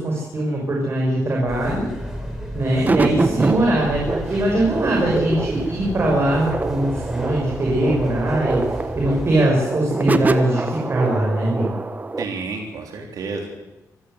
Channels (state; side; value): normal; both; correlation 0.84